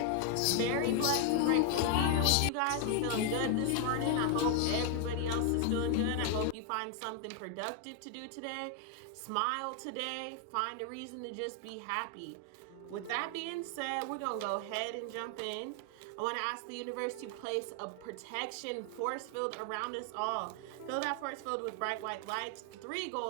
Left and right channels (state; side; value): different; both; correlation 0.00